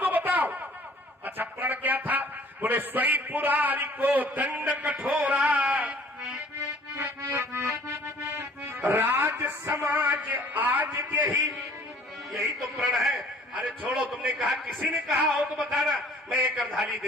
बताओ। अच्छा, प्रण क्या था? बोले स्वई पुरारी को दंड कठोरा, राज समाज आज यही तो प्रण है। अरे छोड़ो, तुमने कहा, किसी ने कहा हो तो बताना, मैं एक अर्धाली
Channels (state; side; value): normal; both; correlation 0.54